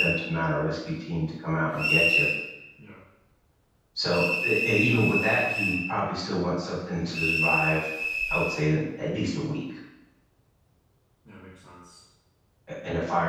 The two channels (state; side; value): identical; both; correlation 1.00